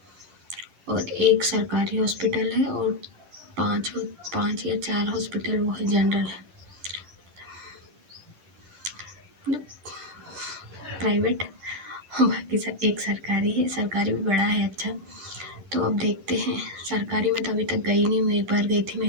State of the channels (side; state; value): left; late; 10 ms